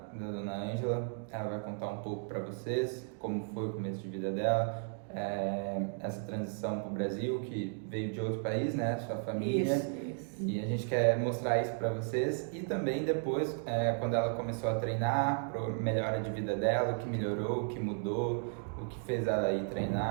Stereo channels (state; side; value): silent; left; 55 dB below the other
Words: Dona Ângela. Ela vai contar um pouco para vocês como foi o começo de vida dela, essa transição para o Brasil, que veio de outro país, né? Sua família. Isso. E a gente quer mostrar isso para vocês e também depois, quando ela começou a treinar, para melhora de vida dela, o que melhorou, o que mudou, o que fez ela ir